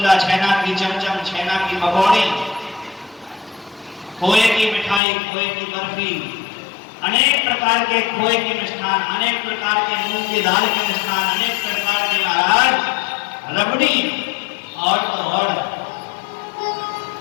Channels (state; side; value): drops out; right; at 5.0 s